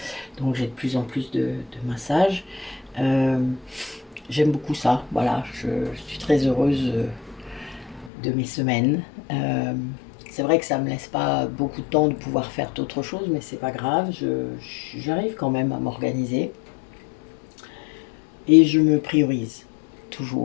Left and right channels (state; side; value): drops out; right; at 8.1 s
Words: donc j'ai de plus en plus de massages. Euh, J'aime beaucoup ça, voilà, je suis très heureuse de mes semaines. C'est vrai que ça me laisse pas beaucoup de temps de pouvoir faire d'autres choses, mais c'est pas grave, j'arrive quand même à m'organiser et je me priorise